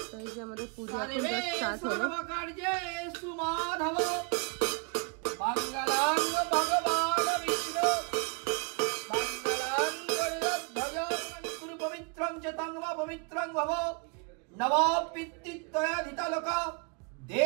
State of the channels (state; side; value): quieter; left; 34.3 dB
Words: তো এই যে আমাদের পূজা স্টার্ট হলো। কার্যে সুমাধব মঙ্গলাং ভগবান বিষ্ণু মঙ্গলাং গরুধ্বজ গুরু পবিত্রং চ তং বা পবিত্রং ভব নব পিতৃত্বয়াধিতলোক